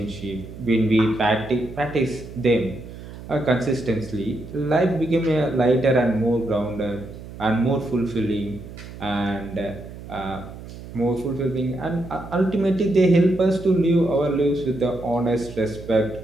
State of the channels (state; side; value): noise; right; hum, 14 dB below the sound